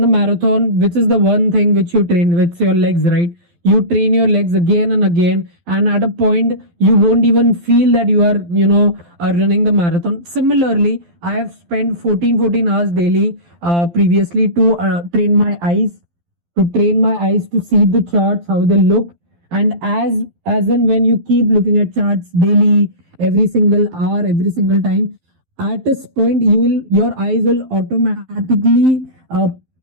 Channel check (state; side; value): late; left; 12 ms